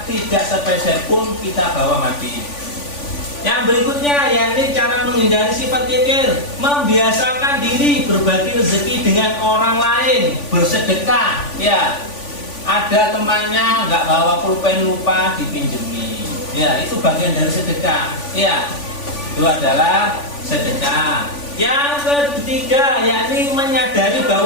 tidak sepeser pun kita bawa mati. Yang berikutnya yakni cara menghindari sifat kikir, membiasakan diri berbagi rezeki dengan orang lain, bersedekah. Ya, ada temannya nggak bawa pulpen, lupa dipinjemi. Ya, itu bagian dari sedekah. Ya, itu adalah sedekah. Yang ketiga yakni menyadari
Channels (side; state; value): right; late; 3.5 ms